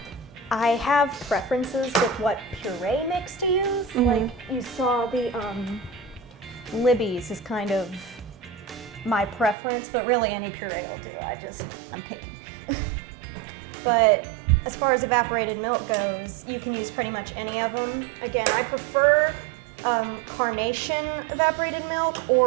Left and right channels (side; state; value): left; drops out; at 9.6 s